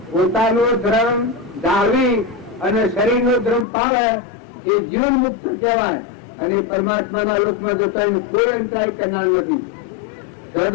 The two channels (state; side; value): drops out; right; at 3.7 s